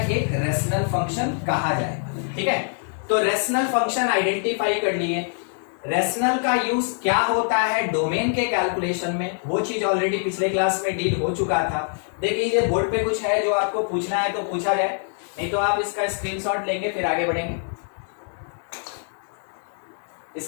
रेशनल फंक्शन कहा जाएगा। ठीक है, तो रेशनल फंक्शन आइडेंटिफाई कर लिए। रेशनल का यूज क्या होता है डोमेन के कैलकुलेशन में, वो चीज ऑलरेडी पिछले क्लास में डील हो चुका था। देख लीजिए बोर्ड पे कुछ है जो आपको पूछना है तो पूछा जाए, नहीं तो आप इसका स्क्रीनशॉट लेंगे फिर आगे बढ़ेंगे।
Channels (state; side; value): silent; right; 61 dB below the other